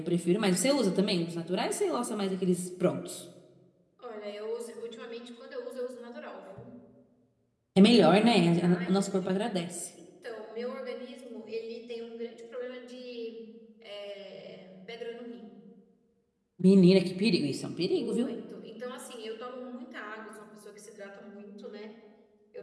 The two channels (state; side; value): identical; both; correlation 1.00